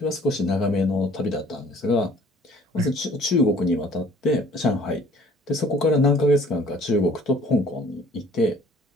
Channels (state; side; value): normal; both; correlation 0.54